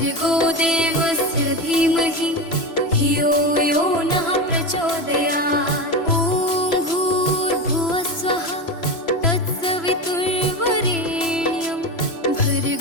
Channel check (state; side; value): late; right; 3.0 ms